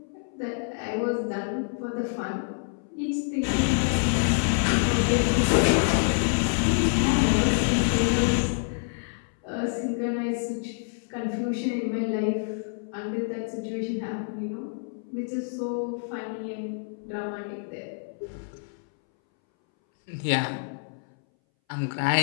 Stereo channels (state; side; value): silent; right; 60 dB below the other